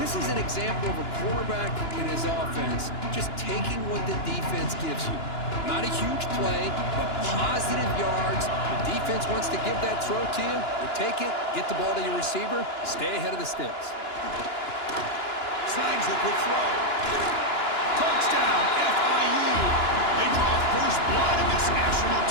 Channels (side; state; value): right; late; 2.9 ms